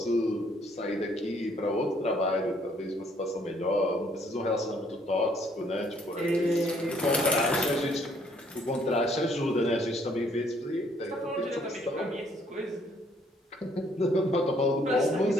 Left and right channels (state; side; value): normal; both; correlation 0.65